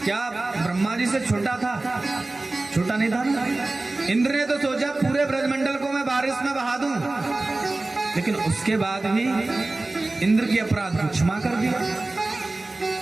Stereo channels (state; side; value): quieter; left; 3.0 dB